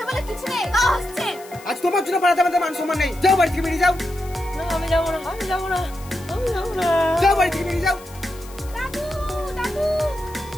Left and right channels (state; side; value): noise; left; hiss, 20 dB below the sound